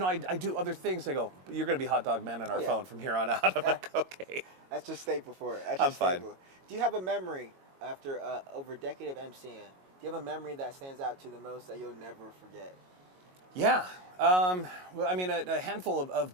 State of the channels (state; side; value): late; left; 22 ms